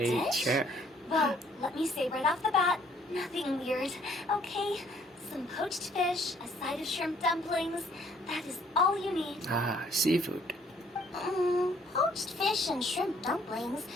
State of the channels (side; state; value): both; normal; correlation 0.62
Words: a new a dish? chair. Well, let me say right off the bat, nothing weird, okay? Some poached fish, a side of shrimp dumplings. That is all you need. Ah, seafood. Poached fish and shrimp dumplings?